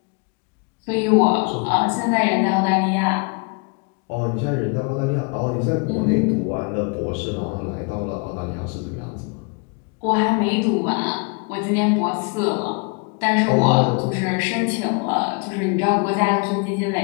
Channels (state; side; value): quieter; right; 32.8 dB